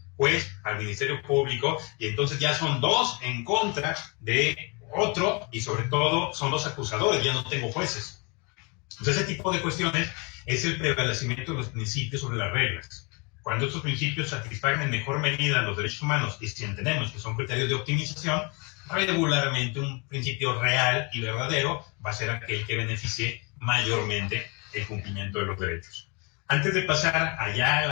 juez, al Ministerio Público, y entonces ya son dos en contra de Otro, y sobre todo, son los acusadores, ya no tengo jueces. Entonces, ese tipo de cuestiones es el prevalecimiento de los principios sobre las reglas. Cuando estos principios satisfagan en mejor medida los derechos humanos, y si entendemos que son criterios de optimización, regularmente un principio real y verdadero va a ser aquel que beneficie mayormente el cumplimiento de los derechos. Antes de pasar allá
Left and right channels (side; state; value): right; quieter; 31.1 dB